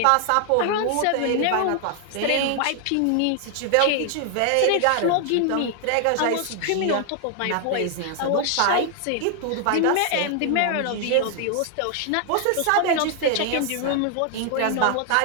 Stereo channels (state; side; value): different; both; correlation 0.00